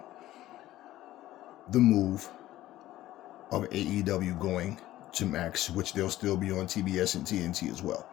the move of AEW going to Max, which they'll still be on TBS and TNT as well.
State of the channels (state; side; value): quieter; right; 14.9 dB